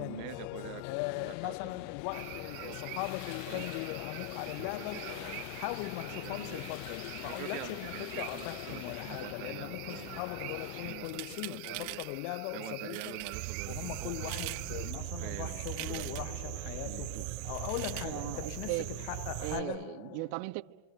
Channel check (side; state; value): both; different; correlation 0.00